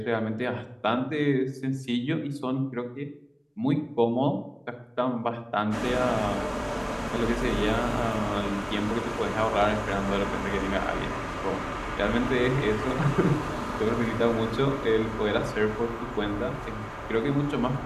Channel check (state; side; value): identical; both; correlation 1.00